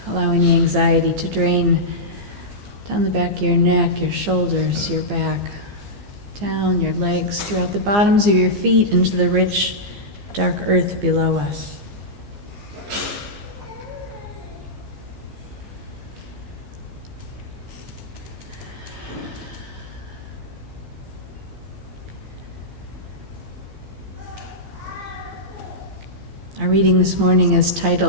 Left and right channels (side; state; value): left; late; 15 ms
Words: Allow any anxiety to drain down the back of your neck, your shoulders, your back, down your legs, throughout the bottoms of your feet into the rich, dark earth below us. Our reading this morning is